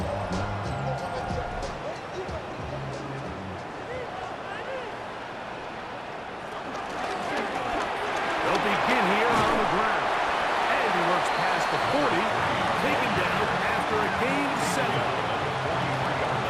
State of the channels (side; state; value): both; identical; correlation 1.00